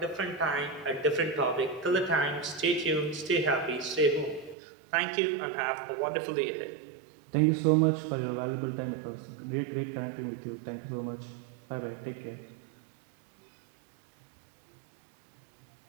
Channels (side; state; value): left; drops out; at 4.5 s